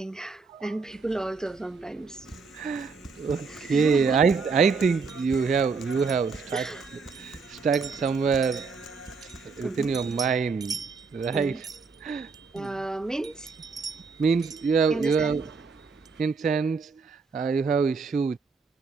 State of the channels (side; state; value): left; quieter; 4.9 dB